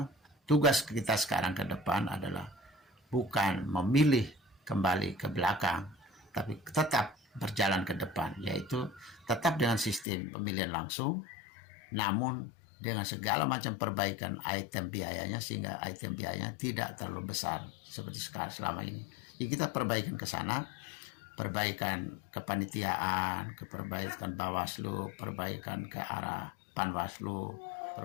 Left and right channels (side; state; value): right; drops out; at 10.1 s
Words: tugas kita sekarang ke depan adalah bukan memilih kembali ke belakang, tapi tetap berjalan ke depan, yaitu tetap dengan sistem pemilihan langsung, namun dengan segala macam perbaikan item biayanya, sehingga item biayanya tidak terlalu besar seperti sekarang selama ini. Jadi kita perbaikan ke sana, perbaikan kepanitiaan, perbaikan Bawaslu, perbaikan ke arah Panwaslu,